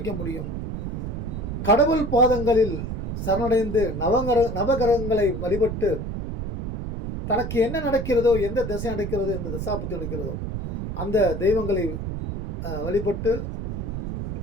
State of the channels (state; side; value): noise; right; rumble, 4 dB below the sound